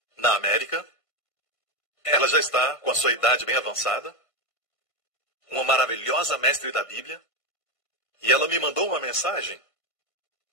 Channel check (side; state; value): right; late; 1.5 ms